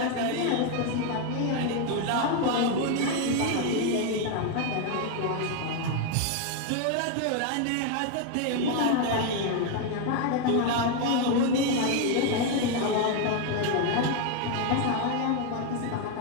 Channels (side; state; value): both; different; correlation 0.01